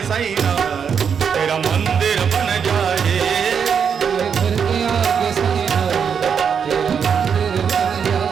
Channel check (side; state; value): left; quieter; 7.0 dB